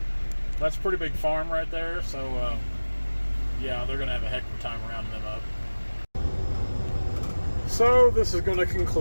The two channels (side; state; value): both; inverted; correlation -1.00